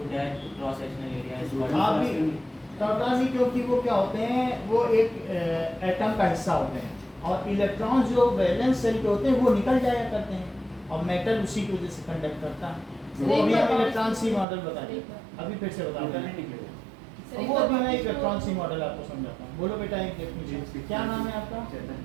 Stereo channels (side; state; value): left; drops out; at 14.5 s